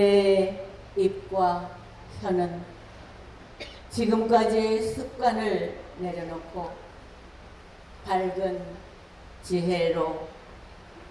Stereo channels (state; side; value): identical; both; correlation 1.00